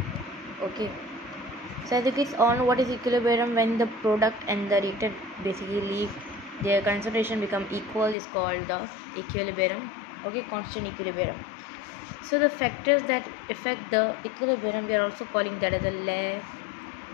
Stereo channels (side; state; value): right; drops out; at 8.2 s